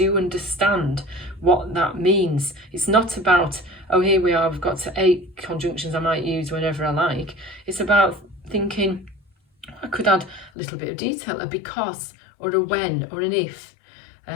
understand what that means. It's not about, oh, here we are, I've got to 8 conjunctions I might use whenever I like. It's about thinking, I could add a little bit of detail, a because, or a when, or an if,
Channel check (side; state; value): right; drops out; at 10.5 s